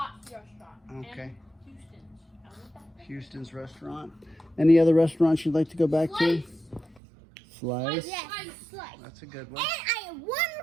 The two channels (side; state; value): left; drops out; at 7.0 s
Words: restaurant. Okay. And Houston's. I want that. Houston's restaurant. Any other restaurants you'd like to go back to? Slice. Slice? Yes, slice. That's a good And one. I have one